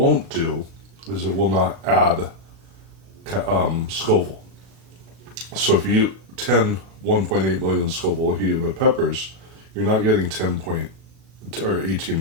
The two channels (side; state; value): left; late; 37 ms